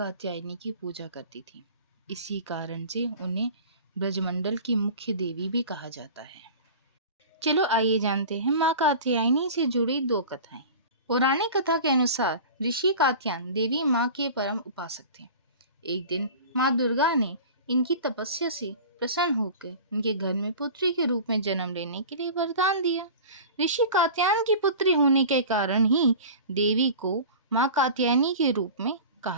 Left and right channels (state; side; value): inverted; both; correlation -0.37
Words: की पूजा करती थी। इसी कारण से उन्हें ब्रजमंडल की मुख्य देवी भी कहा जाता है। चलो आइए जानते हैं माँ कात्यायनी से जुड़ी 2 कथाएं। पौराणिक कथा के अनुसार ऋषि कात्यायन देवी माँ के परम उपासक थे। एक दिन माँ दुर्गा ने इनकी तपस्या से प्रसन्न होकर इनके घर में पुत्री के रूप में जन्म लेने के लिए वरदान दिया। ऋषि कात्यायन की पुत्री होने के कारण ही देवी को माँ कात्यायनी के रूप में